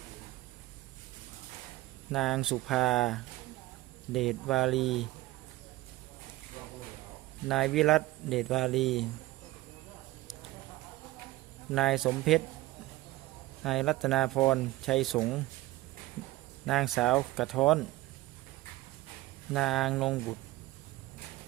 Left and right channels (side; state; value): left; quieter; 18.1 dB